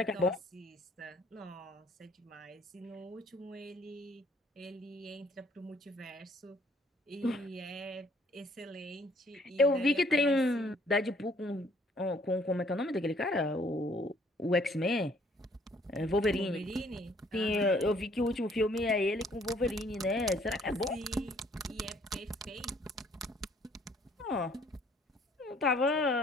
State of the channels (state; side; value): normal; both; correlation 0.62